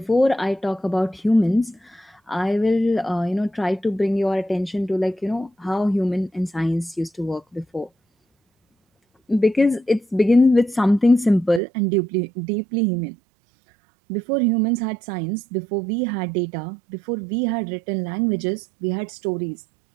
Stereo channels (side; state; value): left; drops out; at 11.6 s